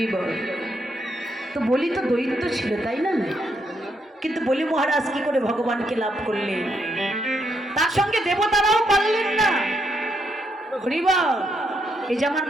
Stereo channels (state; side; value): normal; both; correlation 0.77